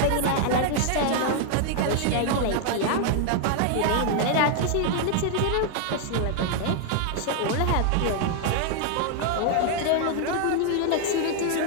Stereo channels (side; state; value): both; different; correlation 0.00